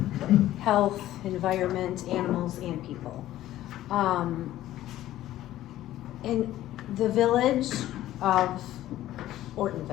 health, environment, animals, and people. In the village of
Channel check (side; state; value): right; quieter; 14.0 dB